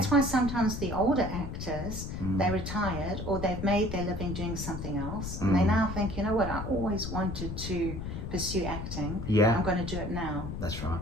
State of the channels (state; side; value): noise; left; rumble, 6 dB below the sound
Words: why sometimes the older actors, they retired or they've made their living doing something else. And they now think, you know what, I always wanted to pursue acting. Yeah. I'm going to do it now. That's right.